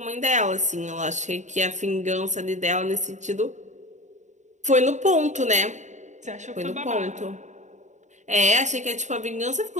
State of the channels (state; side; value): late; left; 0.35 ms